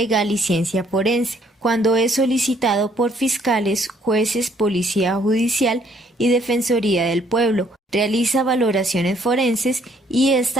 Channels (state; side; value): normal; both; correlation 0.65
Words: y Ciencia Forense, cuando es solicitado por fiscales, jueces, Policía Judicial y Defensoría del Pueblo, realiza valoraciones forenses y